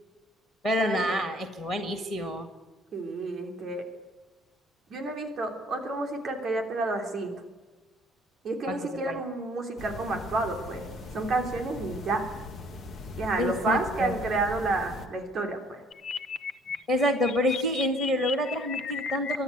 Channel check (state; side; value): normal; both; correlation 0.58